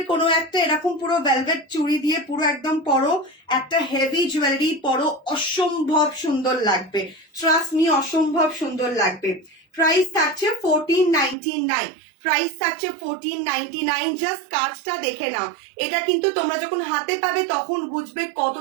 কোনো একটা এরকম পুরো ভেলভেট চুড়ি দিয়ে পুরো একদম পরো, একটা হেভি জুয়েলারি পরো, অসম্ভব সুন্দর লাগবে। ট্রাস্ট মি, অসম্ভব সুন্দর লাগবে। প্রাইস থাকছে 1499, প্রাইস থাকছে 1499। জাস্ট কাজটা দেখে নাও। এটা কিন্তু তোমরা যখন হাতে পাবে তখন বুঝবে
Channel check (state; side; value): drops out; left; at 11.4 s